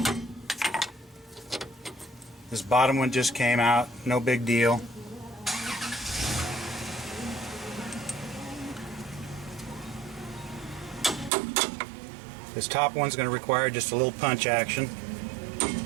This bottom one just came out, no big deal. This top one's going to require just a little punch action.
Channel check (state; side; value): drops out; left; at 11.3 s